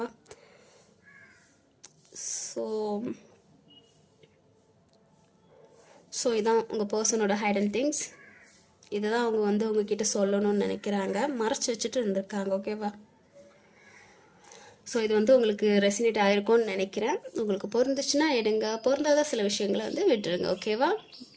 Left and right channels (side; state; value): both; identical; correlation 1.00